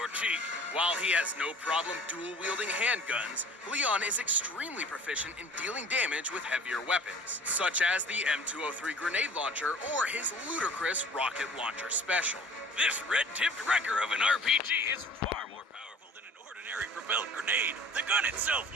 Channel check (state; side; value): normal; both; correlation 0.48